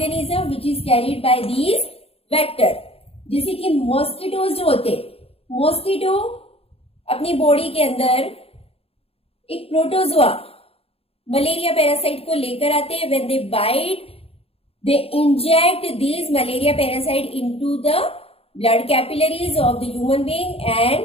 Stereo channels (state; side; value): late; right; 0.28 ms